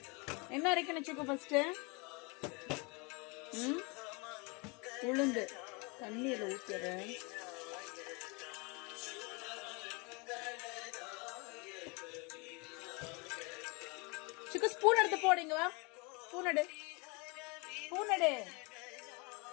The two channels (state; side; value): quieter; right; 29.6 dB